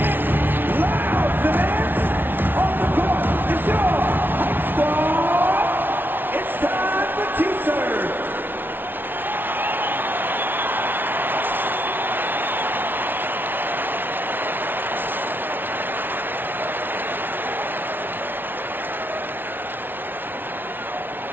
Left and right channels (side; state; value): left; late; 0.096 ms